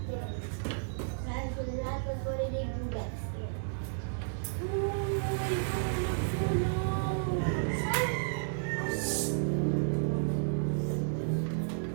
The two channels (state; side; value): silent; left; digital silence